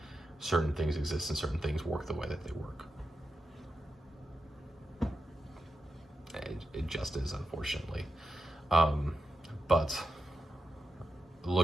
certain things exist and certain things work the way that they work. It just is, unfortunately. But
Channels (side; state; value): both; normal; correlation 0.88